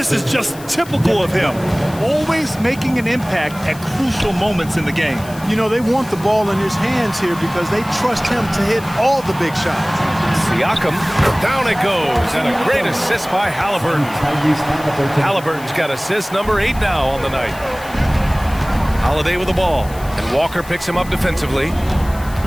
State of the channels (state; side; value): noise; left; hiss, 19 dB below the sound